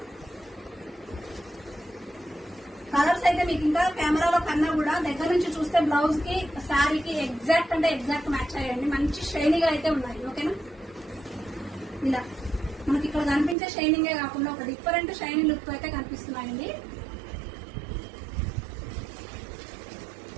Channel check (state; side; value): drops out; left; at 13.6 s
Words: colours అయితే మీకు ఇంకా కెమెరాలో కన్నా కూడా దగ్గర నుంచి చూస్తే బ్లౌజ్ కి శారీకి ఎగ్జాక్ట్ అంటే ఎగ్జాక్ట్ మ్యాచ్ అయ్యండి. మంచి షైనీగా అయితే ఉన్నాయి. ఓకేనా, ఇలా మనకి ఇక్కడ కనిపించే షైనింగే కాకుండా ఒక డిఫరెంట్ షైనింగ్ లుక్ అయితే కనిపిస్తున్నాయండి.